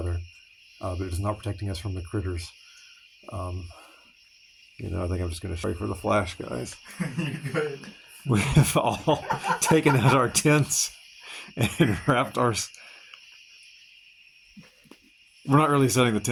but it is not protecting us from the critters. You know, I think I'm just going to show you for the flash, guys. You're good. We have all taken out our tents and wrapped our... We're not really setting the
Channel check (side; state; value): both; identical; correlation 1.00